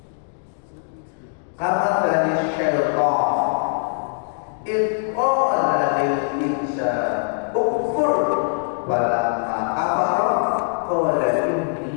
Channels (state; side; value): silent; right; digital silence